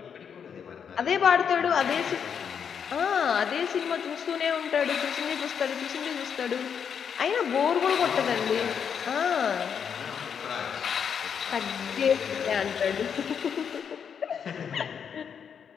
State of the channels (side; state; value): right; quieter; 7.3 dB